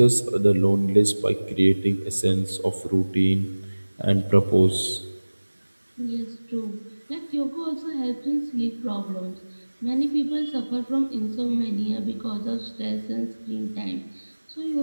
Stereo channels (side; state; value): both; inverted; correlation -1.00